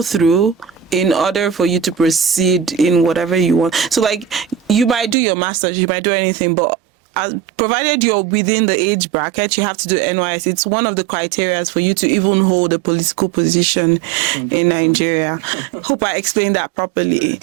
through in order for you to proceed in whatever you want. So like you might do your master's, you might do anything, but provided you're within the age bracket, you have to do NYS. It's one of the criteria for you to even hold a political position 100%. In Nigeria. Hope I explained that properly. Yeah, you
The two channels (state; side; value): drops out; left; at 5.2 s